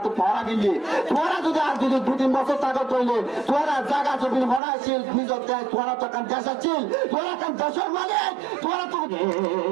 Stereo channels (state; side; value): drops out; left; at 4.6 s